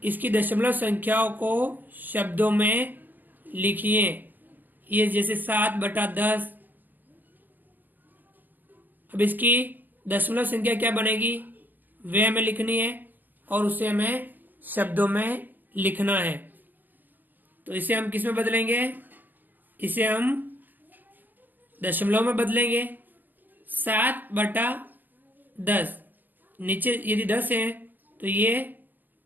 इसकी दशमलव संख्याओं को शब्दों में लिखिए। ये जैसे 7/10। अब इसकी दशमलव संख्या क्या बनेगी वे हमें लिखनी है और उसे हमें शब्दों में लिखना है। तो इसे हम किस में बदलेंगे? इसे हम दशमलव में बदलेंगे। 7/10, नीचे यदि 10 है तो ये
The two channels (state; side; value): late; left; 0.087 ms